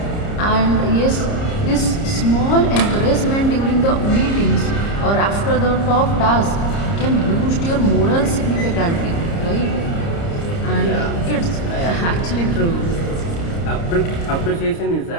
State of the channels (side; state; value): right; late; 30 ms